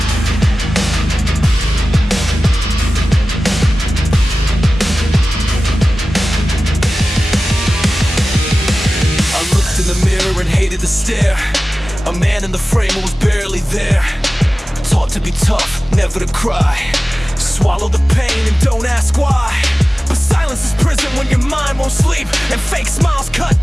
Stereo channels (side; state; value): both; normal; correlation 0.96